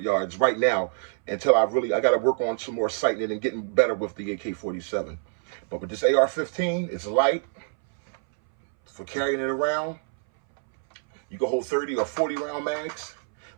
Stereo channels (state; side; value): silent; left; 61 dB below the other